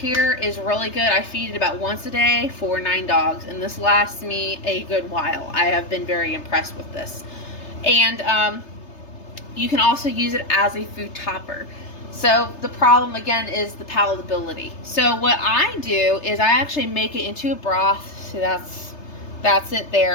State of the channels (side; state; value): right; late; 3.3 ms